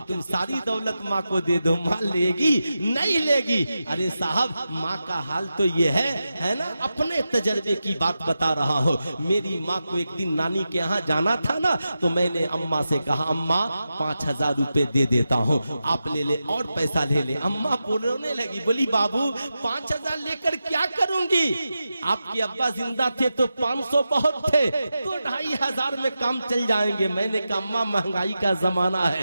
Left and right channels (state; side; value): inverted; both; correlation -0.91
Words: तुम सारी दौलत माँ को दे दो, माँ लेगी नहीं लेगी। अरे साहब, माँ का हाल तो ये है ना, अपने तजर्बे की बात बता रहा हूँ। मेरी माँ को एक दिन नानी के यहाँ जाना था ना, तो मैंने अम्मा से कहा अम्मा 5000 रुपए दे देता हूँ, आप ले ले और पैसा ले ले। अम्मा बोलने लगी, बोली बाबू 5000 लेकर क्या करूंगी? आपके अब्बा जिंदा थे तो 500 बहुत थे, तो 2500 में काम चल जाएंगे। मैंने कहा अम्मा महंगाई का जमाना